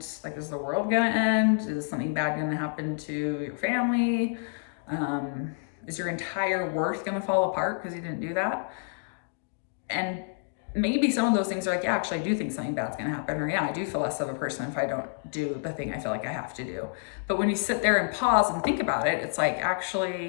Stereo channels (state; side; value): silent; right; digital silence